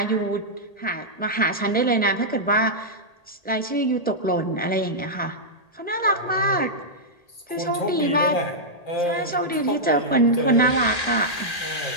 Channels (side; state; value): right; late; 1.8 ms